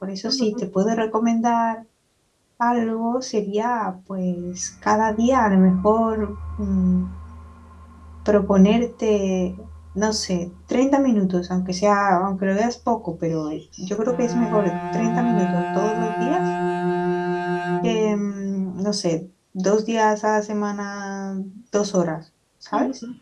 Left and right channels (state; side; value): identical; both; correlation 1.00